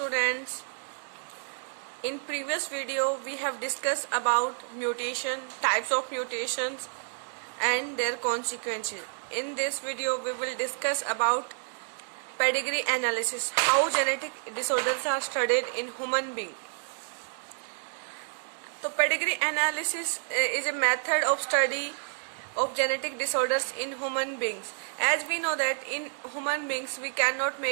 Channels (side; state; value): left; silent; digital silence